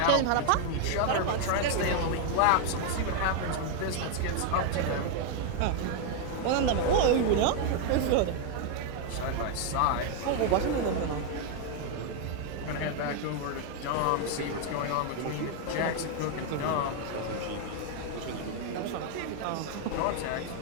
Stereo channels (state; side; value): different; both; correlation 0.01